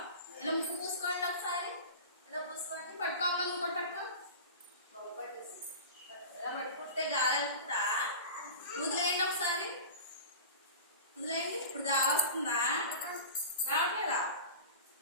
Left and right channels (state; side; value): inverted; both; correlation -0.33